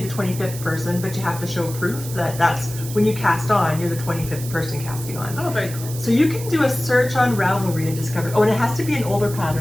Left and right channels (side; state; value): right; noise; hiss, 12 dB below the sound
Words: the 25th person, but you have to show proof that that's when you cast on, you're the 25th person casting on. Oh, very cool. So you can do a search on Ravelry and discover, and it has to be an older